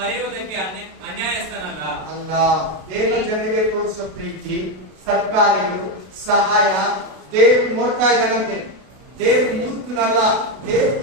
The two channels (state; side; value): late; left; 32 ms